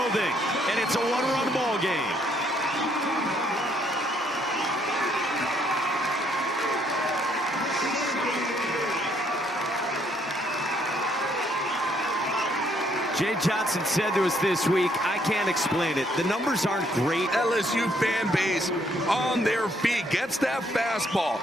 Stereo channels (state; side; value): normal; both; correlation 0.69